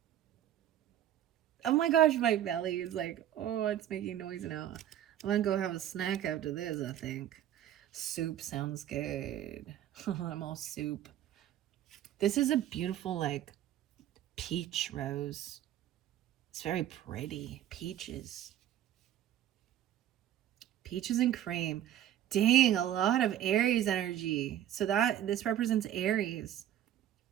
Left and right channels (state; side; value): quieter; left; 11.5 dB